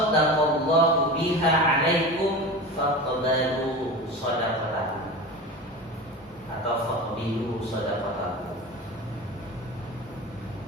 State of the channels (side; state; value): both; normal; correlation 0.30